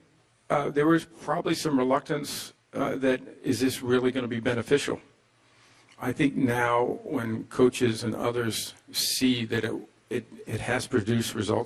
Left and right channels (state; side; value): identical; both; correlation 1.00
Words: there was probably some reluctance that is this really going to be beneficial? I think now when coaches and others see that it has produced